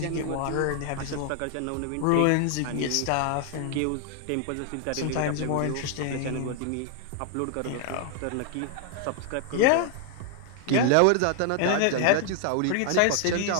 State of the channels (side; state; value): both; different; correlation 0.00